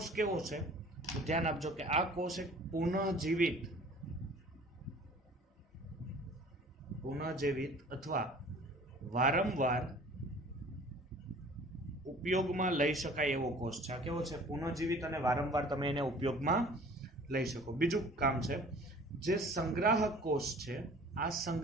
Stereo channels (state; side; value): normal; both; correlation 0.48